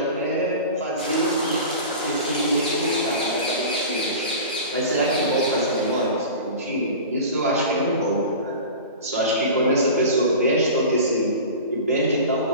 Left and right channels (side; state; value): both; inverted; correlation -0.34